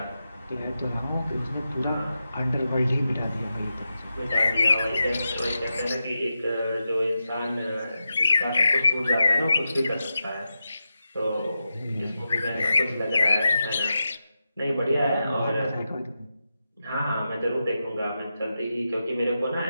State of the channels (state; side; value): inverted; both; correlation -0.90